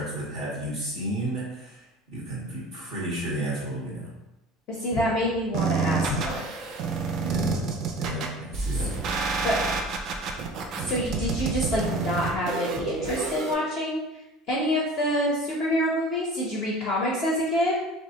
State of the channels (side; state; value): both; normal; correlation 0.40